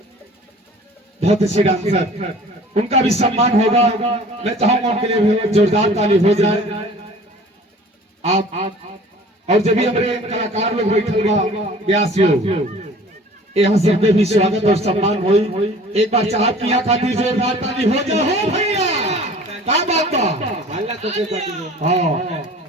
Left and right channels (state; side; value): normal; both; correlation 0.47